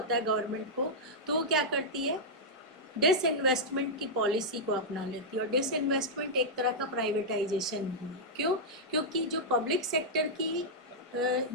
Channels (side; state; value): both; normal; correlation -0.07